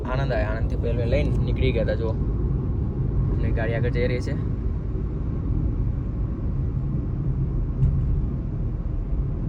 આણંદ આવ્યા. આણંદથી પહેલાં લઈને નીકળી ગયા હતા. જો એમની ગાડી આગળ જઈ રહી છે.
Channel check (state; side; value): identical; both; correlation 1.00